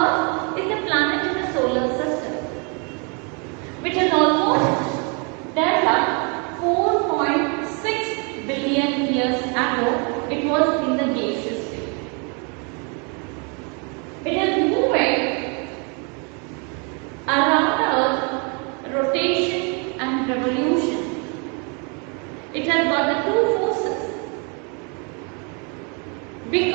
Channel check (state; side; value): quieter; left; 34.8 dB